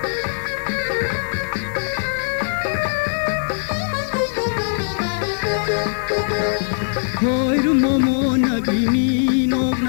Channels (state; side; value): silent; right; digital silence